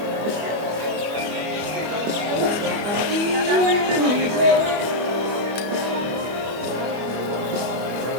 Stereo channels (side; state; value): left; late; 24 ms